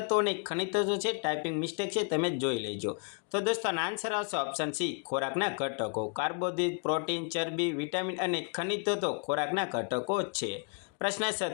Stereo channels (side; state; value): right; quieter; 36.7 dB